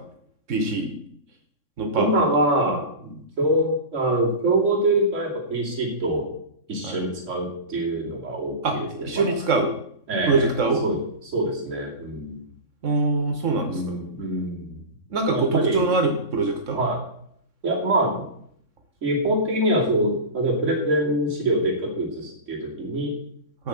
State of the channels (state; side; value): late; left; 3.6 ms